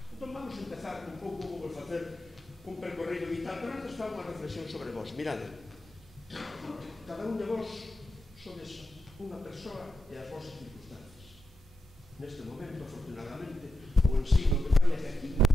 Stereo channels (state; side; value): normal; both; correlation 0.88